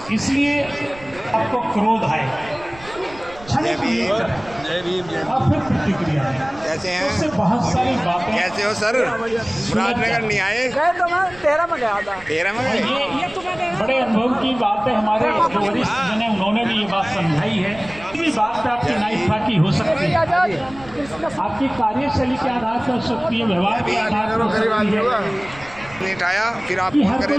इसलिए आपको क्रोध आएगा, क्षणिक लिए और फिर प्रतिक्रिया है। कैसे हैं? उससे बहुत सारी बातें। कैसे हो सर? मुरादनगर नहीं आए? गए तो मैं 13 में गया था। 13 में गए? ये तो मैं बड़े अनुभव की बात है। हमारे जो वरिष्ठ जन हैं उन्होंने भी ये बात समझाई है। किसी बात पे आपकी नाइफाकी हो सकती है, आपकी कार्यशैली के आधार पर हो सकती है, व्यवहार के आधार पर हो सकती है। नहीं उठाया, फिर आप कि फोन हर करें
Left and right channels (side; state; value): right; noise; rumble, 20 dB below the sound